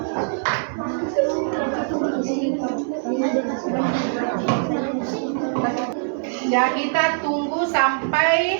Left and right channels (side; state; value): left; silent; digital silence